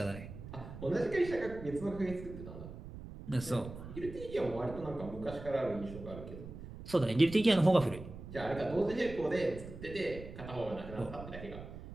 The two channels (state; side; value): noise; right; rumble, 12 dB below the sound